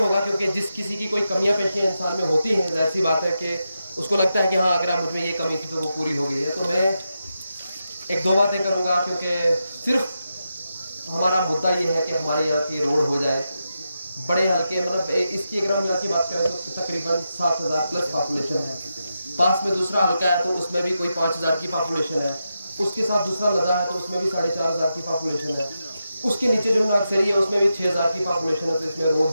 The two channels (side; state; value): both; inverted; correlation -0.88